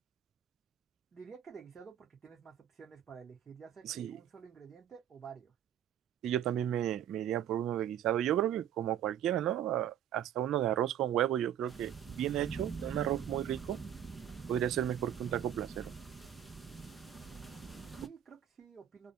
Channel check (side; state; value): left; quieter; 10.5 dB